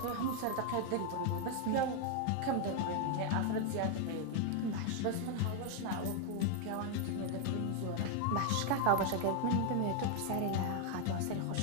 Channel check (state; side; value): different; both; correlation 0.00